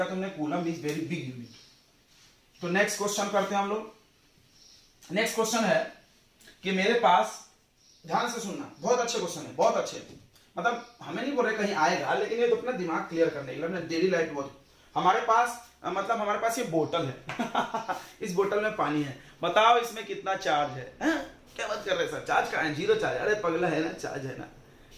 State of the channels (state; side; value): identical; both; correlation 1.00